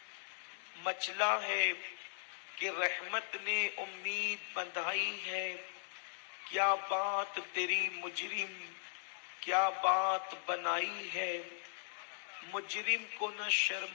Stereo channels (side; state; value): right; silent; digital silence